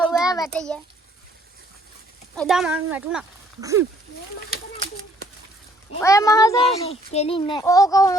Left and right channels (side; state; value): both; normal; correlation 0.62